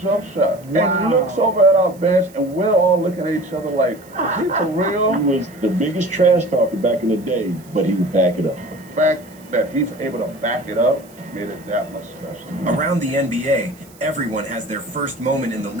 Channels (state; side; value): noise; right; hiss, 25 dB below the sound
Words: shot. Wow. And looks over at our bench, and we're all looking at each other like, is he for real? He was the biggest trash talker back in the day, but he would back it up. The fact that he's able to back it up made it that much special. Around the NBA, everyone has their first moment in the